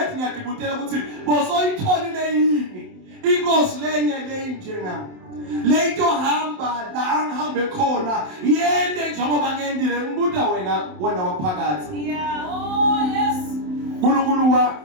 ngiyadibutela ukuthi bosoyitholile yini inkosi lenye njengami leto hamba la ngihambe khona yende njengoba ngendile ngibuda wena waphakathi uNkulunkulu wa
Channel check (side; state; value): left; late; 27 ms